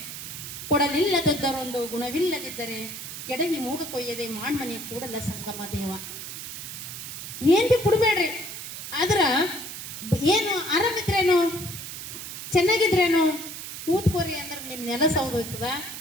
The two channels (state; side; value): noise; right; hiss, 9 dB below the sound